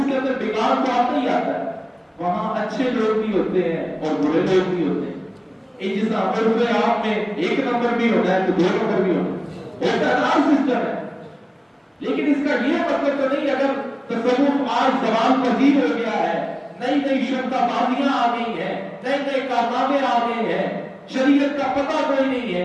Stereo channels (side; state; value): both; identical; correlation 1.00